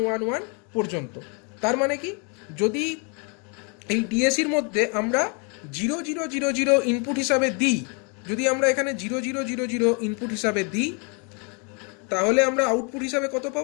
পর্যন্ত। তার মানে কি, যদি এই ডিএসির মধ্যে আমরা 0000 ইনপুট হিসাবে দিই, যদি আমরা এখানে 0000 ইনপুট হিসাবে দিই, তাহলে আমরা আউটপুট হিসাবে কত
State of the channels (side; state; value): right; quieter; 35.5 dB